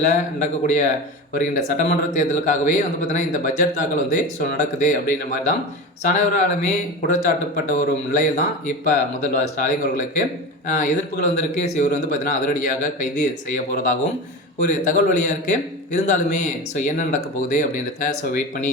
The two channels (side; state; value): both; normal; correlation 0.27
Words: நடக்கக்கூடிய வருகின்ற சட்டமன்ற தேர்தலுக்காகவே பார்த்தீங்கன்னா இந்த பட்ஜெட் தாக்கல் நடக்குது அப்படின்ற மாதிரி தான் அனைவராலுமே குற்றச்சாட்டப்பட்ட ஒரு நிலையில் தான் இப்போ முதல்வர் ஸ்டாலின் அவர்களுக்கு எதிர்ப்புகள் வந்திருக்கு. இவர் பார்த்தீங்கன்னா அதிரடியாக கைது செய்ய போகிறதாகவும் ஒரு தகவல் வழியாக இருக்குது. இருந்தாலுமே என்ன நடக்க போகுது அப்படின்றத வெயிட் பண்ணி